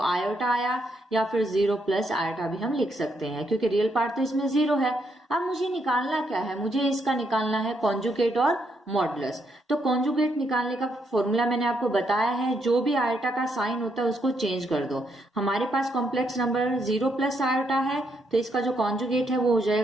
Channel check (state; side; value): normal; both; correlation 0.77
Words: आयोटा आया, या फिर 0 + आयोटा भी हम लिख सकते हैं क्योंकि रियल पार्ट तो इसमें 0 है। अब मुझे निकालना क्या है, मुझे इसका निकालना है कॉन्जुगेट और मॉडुलस। तो कॉन्जुगेट निकालने का फॉर्मूला मैंने आपको बताया है, जो भी आयोटा का साइन होता है उसको चेंज कर दो। हमारे पास कॉम्प्लेक्स नंबर 0 + आयोटा है तो इसका जो कॉन्जुगेट है वो हो